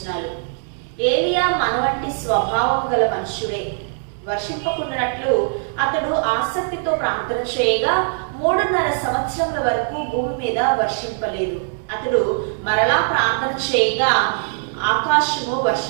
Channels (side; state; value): left; silent; digital silence